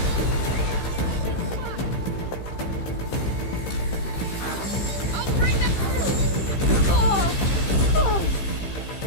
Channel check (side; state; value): right; late; 15 ms